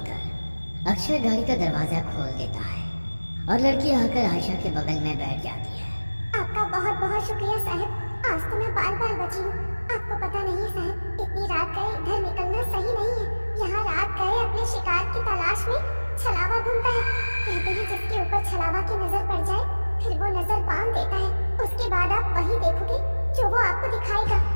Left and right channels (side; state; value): both; inverted; correlation -1.00